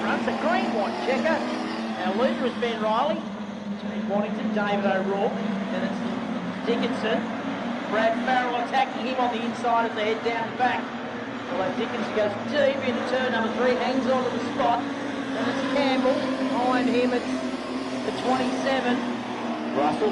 run. It's a green, white checker. Our leader is Ben Riley, Jade Waddington, David O'Rourke, and it's Dickinson. Brad Farrell attacking him on the inside as they head down the back. Although Dickinson goes deep into turn number 3, hangs on to the spot. And it's Campbell. Behind him it's the 27. Russell.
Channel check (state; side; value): identical; both; correlation 1.00